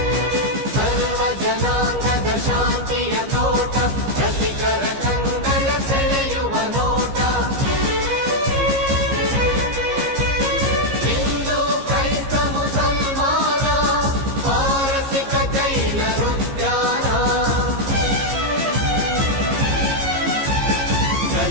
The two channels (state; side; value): late; left; 15 ms